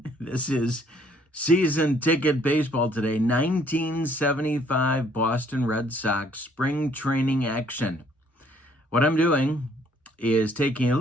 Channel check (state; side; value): normal; both; correlation 0.63